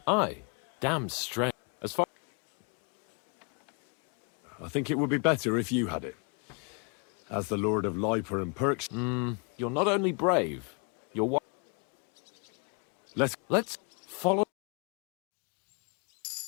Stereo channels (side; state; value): right; quieter; 36.2 dB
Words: Aye. Damn strange. As far... I think it would be better if you had it. As the Lord of Liper and Perks. You're not only brave, you're what? Let's follow...